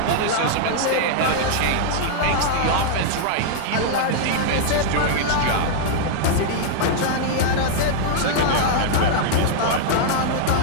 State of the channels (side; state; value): both; different; correlation -0.01